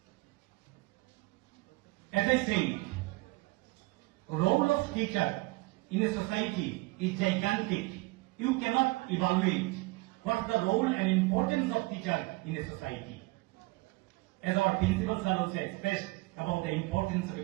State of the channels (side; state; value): left; quieter; 23.0 dB